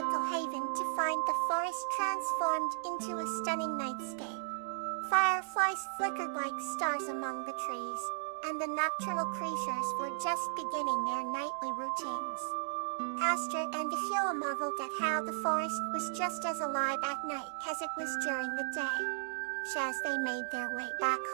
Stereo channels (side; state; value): left; silent; digital silence